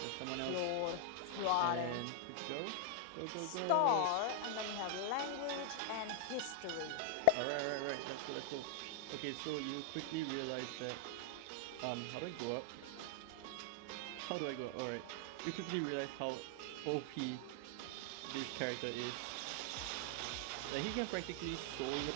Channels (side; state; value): both; different; correlation 0.00